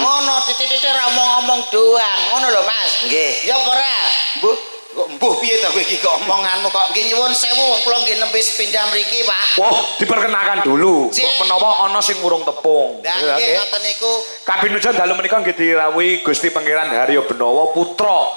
Ngono titik-titik ra omong-omong doang. Ngono lho Mas. Nggih. Ya apa ora? Bu, Kok mbuh piye ta kowe iki kok omonganmu kok nggih nyuwun sewu wong kula nggih nembe sepindhah mriki Pak. Wah, diperkenalkan dulu. Menawa ana sing urung tepung. Lah nggih ngoten niku. Kabinujan dalu menika nggih dirawuhi Gusti Pangeran Haryo Benawa putra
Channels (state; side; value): inverted; both; correlation -1.00